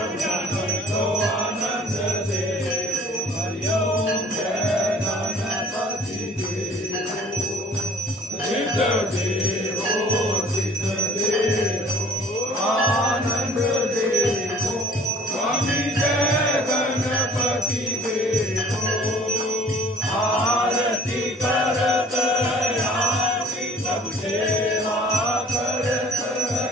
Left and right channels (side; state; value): both; normal; correlation 0.52